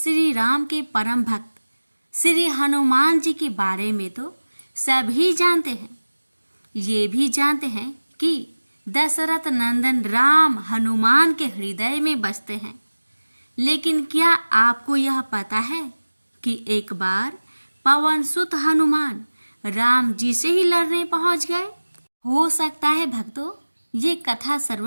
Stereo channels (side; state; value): both; inverted; correlation -1.00